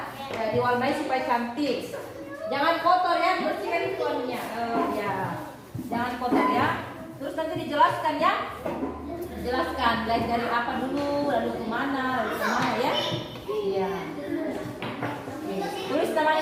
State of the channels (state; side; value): identical; both; correlation 1.00